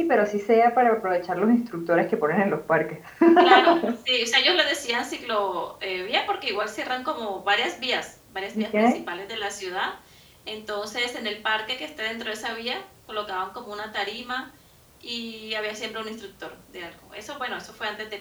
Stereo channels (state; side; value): identical; both; correlation 1.00